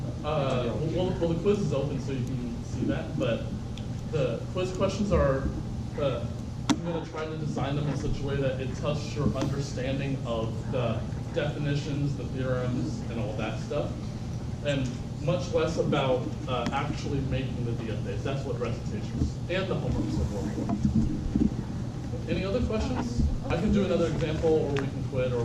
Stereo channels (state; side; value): identical; both; correlation 1.00